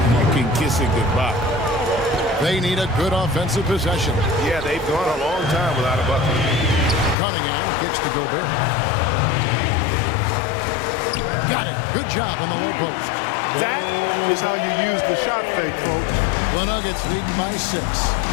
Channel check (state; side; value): drops out; right; at 7.2 s